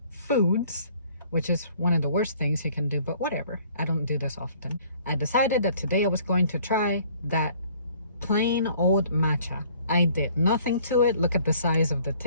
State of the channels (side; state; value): both; inverted; correlation -0.57